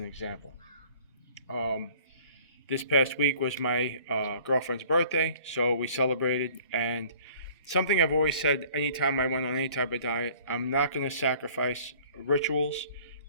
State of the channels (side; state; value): both; inverted; correlation -0.52